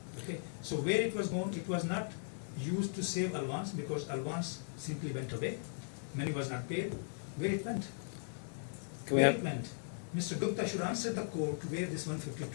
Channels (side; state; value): right; silent; digital silence